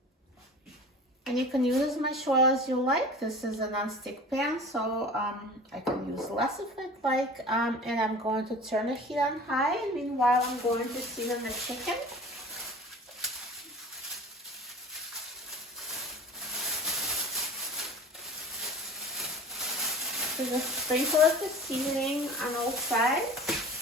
And you can use as much oil as you like. This is a non-stick pan, so I can use less if I'd like. And I'm going to turn the heat on high. And meanwhile, I'm going to season the chicken. So just sprinkle up the seasoning on all sides.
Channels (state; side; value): normal; both; correlation 0.39